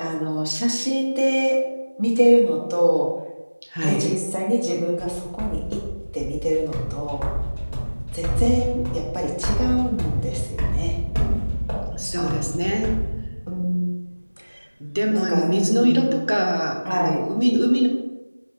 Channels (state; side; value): inverted; both; correlation -1.00